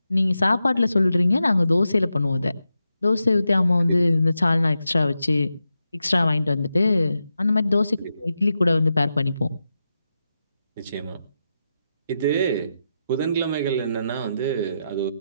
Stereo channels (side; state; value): both; inverted; correlation -0.88